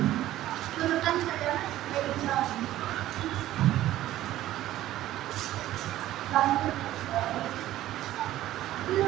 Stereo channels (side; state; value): left; quieter; 14.2 dB